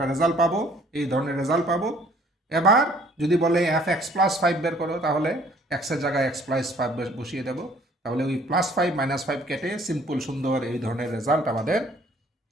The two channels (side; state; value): both; normal; correlation 0.57